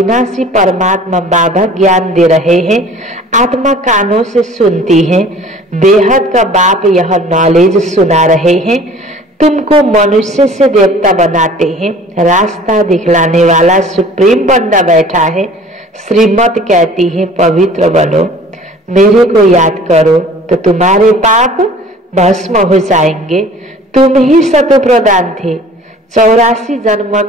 परमात्मा बाबा ज्ञान दे रहे हैं। आत्मा कानों से सुनती है, बेहद का बाप यह नॉलेज सुना रहे हैं। तुमको मनुष्य से देवता बनाते हैं, रास्ता दिखलाने वाला सुप्रीम बंदा बैठा है। श्रीमत कहती है पवित्र बनो, मेरे को याद करो तो तुम्हारे पाप भस्म हो जाएंगे। तुम ही सतो प्रदान थे, 84 जन्म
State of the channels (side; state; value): both; normal; correlation 0.48